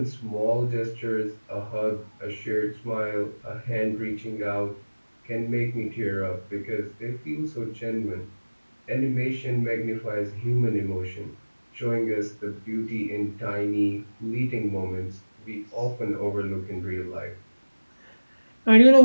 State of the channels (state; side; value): inverted; both; correlation -1.00